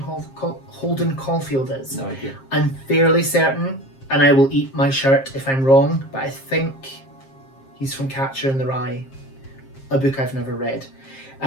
Holden Caulfield is? No idea. I'm fairly certain, and I will eat my shirt if I'm wrong, but I think he's from Catcher in the Rye, a book I've never read.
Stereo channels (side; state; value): right; late; 7.5 ms